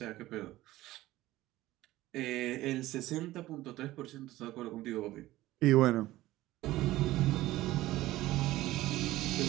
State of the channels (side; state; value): left; quieter; 16.6 dB